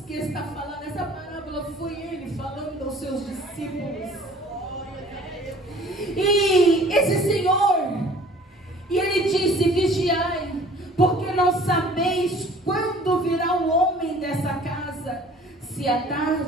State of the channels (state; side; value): normal; both; correlation 0.51